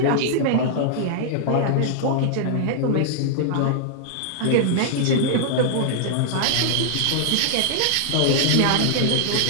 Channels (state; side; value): different; both; correlation -0.01